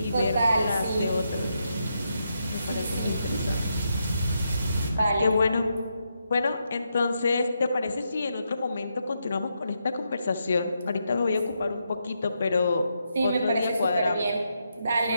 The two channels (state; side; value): inverted; both; correlation -0.82